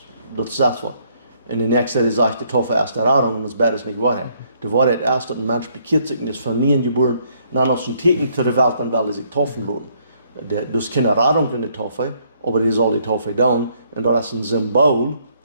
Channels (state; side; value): inverted; both; correlation -0.69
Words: das was. In der nächsten Zeit sagt die Taufe erst Erfahrung und das Bett ist nicht Wahrheit. Die Wahrheit erst, dass ein Mensch bekehrt sich und ist von nie geboren, und dann aus dem Teken zu der Welt, dann will er sich taufen lassen. Das ist keine Erfahrung in der Taufe, aber die soll die Taufe tun, und das ist ein Symbol,